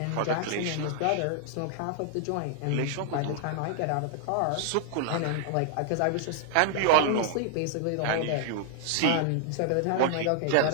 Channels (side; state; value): both; different; correlation 0.00